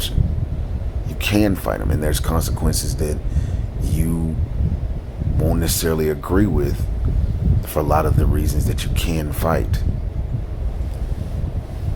You can fight them, and there's consequences that you won't necessarily agree with for a lot of the reasons that you can fight.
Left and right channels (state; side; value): identical; both; correlation 1.00